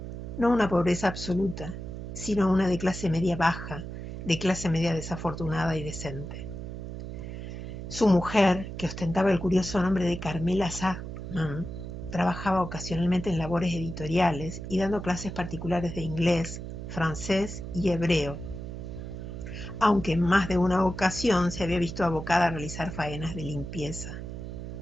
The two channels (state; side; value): noise; right; hum, 8 dB below the sound